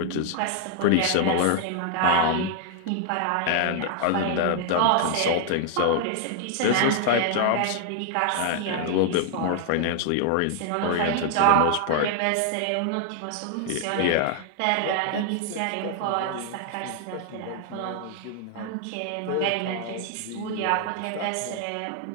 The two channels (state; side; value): different; both; correlation 0.00